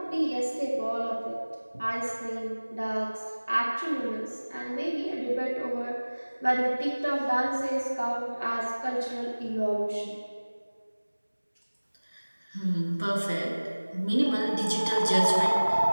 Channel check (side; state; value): both; inverted; correlation -1.00